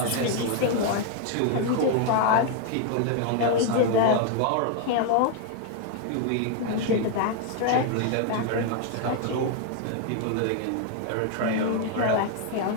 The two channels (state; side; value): different; both; correlation 0.00